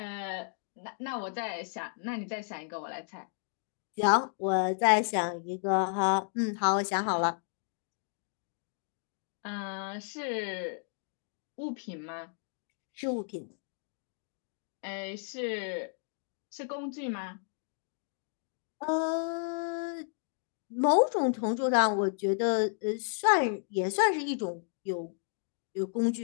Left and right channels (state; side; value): silent; right; digital silence